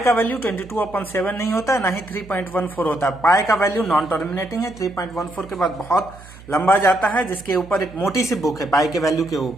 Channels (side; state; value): right; noise; hum, 19 dB below the sound